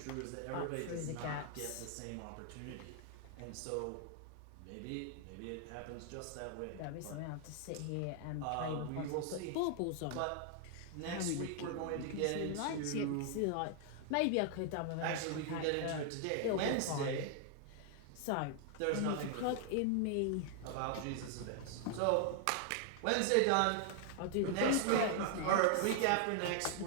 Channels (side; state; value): both; different; correlation 0.00